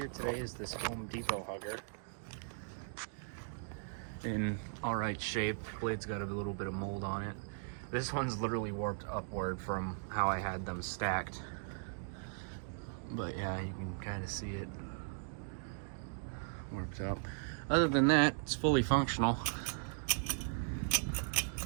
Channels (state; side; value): silent; left; digital silence